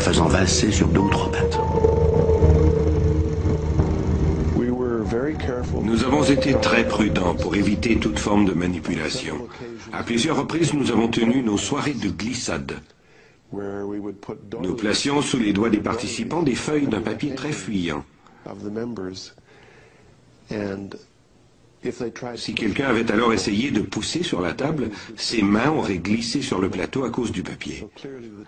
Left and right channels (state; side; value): identical; both; correlation 1.00